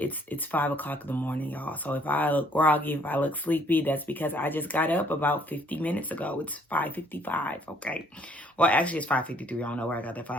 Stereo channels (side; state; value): both; normal; correlation 0.63